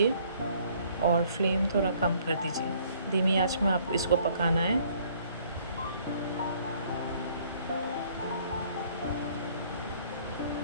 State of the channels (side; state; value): both; inverted; correlation -0.61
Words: और फ्लेम थोड़ा कम कर दीजिए। धीमी आंच में आप इसको पकाना है।